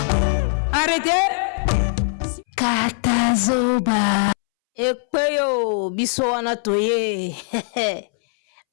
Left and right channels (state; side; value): silent; right; 65 dB below the other